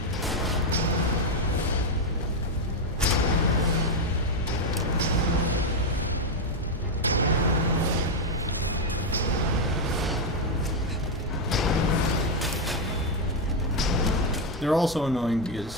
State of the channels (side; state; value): both; normal; correlation 0.04